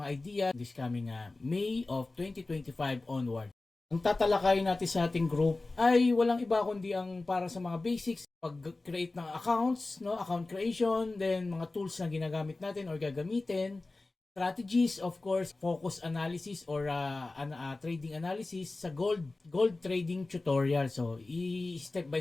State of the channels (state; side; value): quieter; right; 3.2 dB